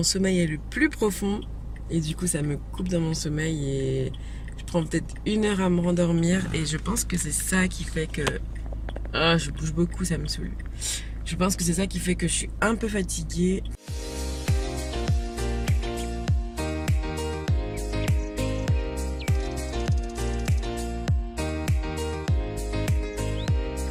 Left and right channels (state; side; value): identical; both; correlation 1.00